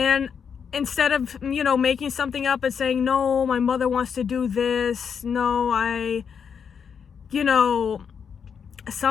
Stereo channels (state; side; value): quieter; right; 6.9 dB